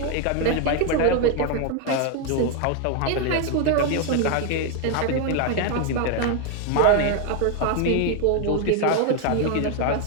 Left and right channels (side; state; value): both; different; correlation 0.01